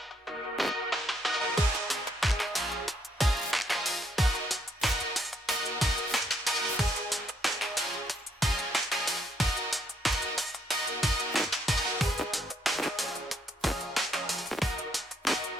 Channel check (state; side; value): normal; both; correlation 0.72